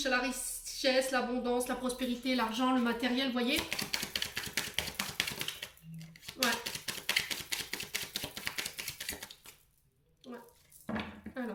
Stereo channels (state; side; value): identical; both; correlation 1.00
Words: à la richesse, l'abondance, la prospérité, l'argent, le matériel, vous voyez. Ouais. Ouais.